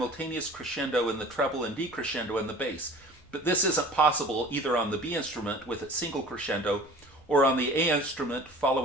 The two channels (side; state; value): both; normal; correlation 0.44